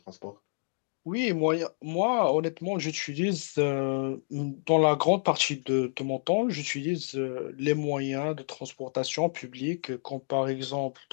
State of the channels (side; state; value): right; silent; digital silence